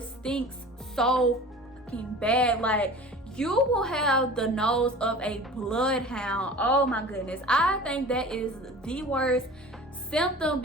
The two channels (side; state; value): both; normal; correlation 0.40